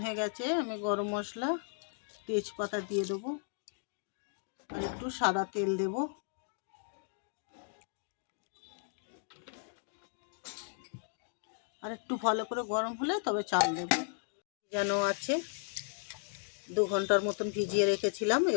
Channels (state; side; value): silent; right; 54 dB below the other